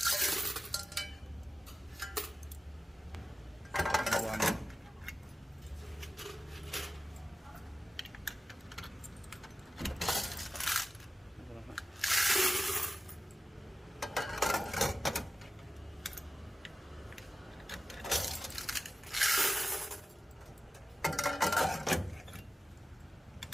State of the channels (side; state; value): both; normal; correlation 0.95